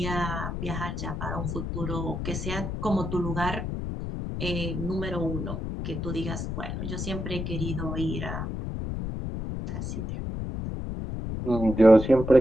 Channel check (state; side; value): noise; left; rumble, 4 dB below the sound